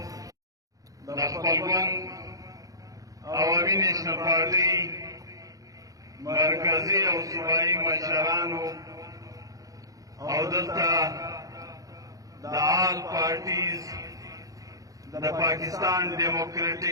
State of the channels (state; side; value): late; left; 0.17 ms